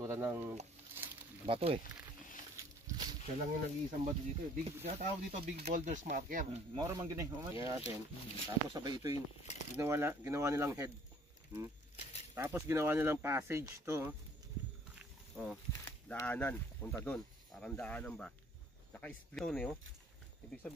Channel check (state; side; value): normal; both; correlation 0.57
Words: ng bato eh. Siya lang yung nag-iisang bato dito. Tawag dito big boulders marker. Moro man gini. Yan natin. Tapos sabay ito yung ginawa nilang head. Tapos ginawa nilang passage to. Oh, daanan. Papunta doon. Parang daanan ba? Naka-split to eh. Oh. Ibig